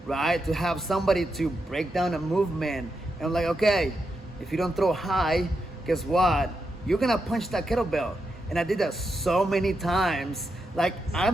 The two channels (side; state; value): both; normal; correlation 0.85